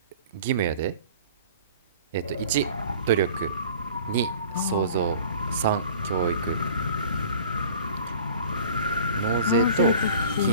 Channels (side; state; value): both; inverted; correlation -0.45